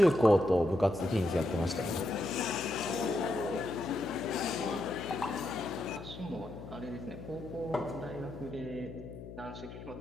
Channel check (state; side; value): noise; left; hum, 12 dB below the sound